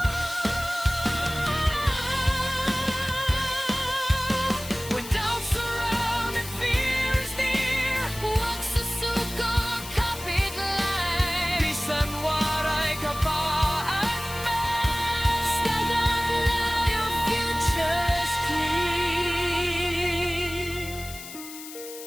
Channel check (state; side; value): noise; left; hiss, 13 dB below the sound